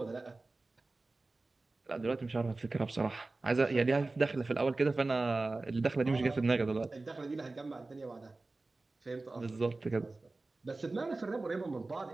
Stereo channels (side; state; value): left; quieter; 3.3 dB